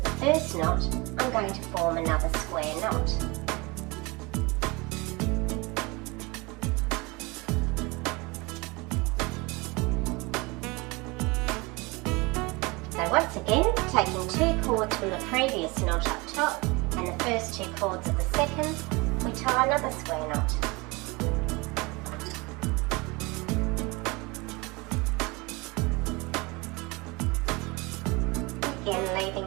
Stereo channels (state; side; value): quieter; left; 25.6 dB